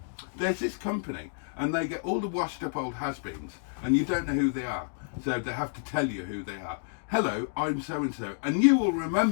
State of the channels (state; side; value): silent; right; digital silence